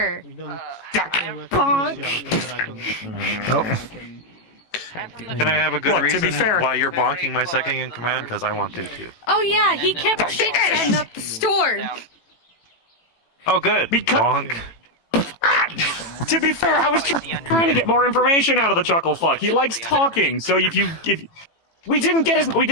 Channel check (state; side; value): late; right; 18 ms